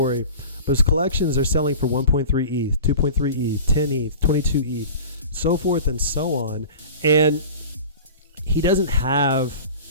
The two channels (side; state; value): both; inverted; correlation -0.38